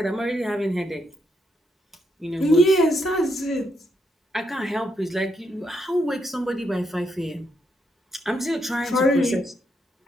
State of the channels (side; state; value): both; normal; correlation 0.78